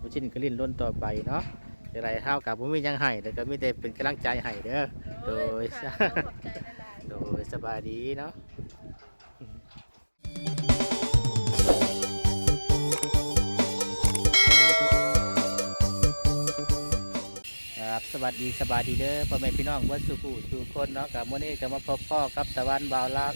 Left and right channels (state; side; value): inverted; both; correlation -1.00